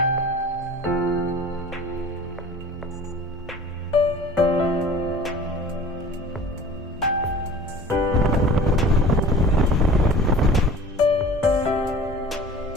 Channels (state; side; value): normal; both; correlation 0.43